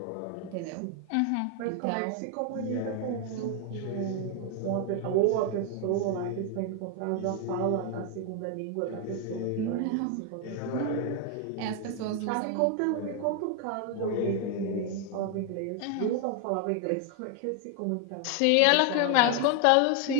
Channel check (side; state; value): both; different; correlation 0.01